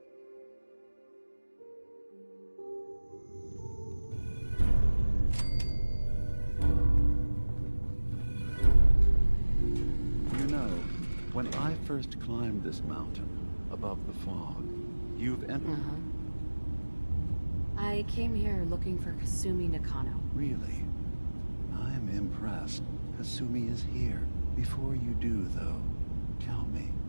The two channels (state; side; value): inverted; both; correlation -1.00